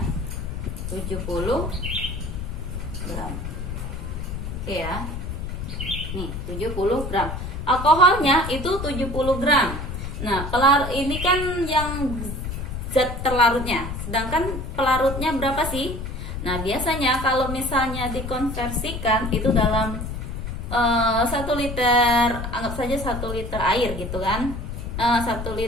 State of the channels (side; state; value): left; noise; rumble, 6 dB below the sound